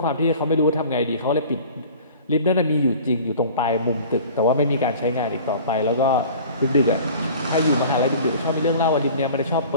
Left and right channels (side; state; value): both; inverted; correlation -0.44